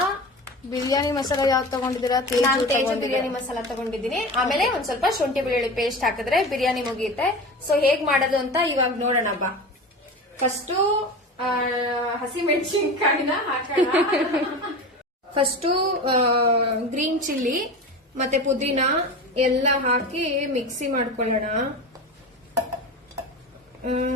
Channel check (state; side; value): normal; both; correlation 0.30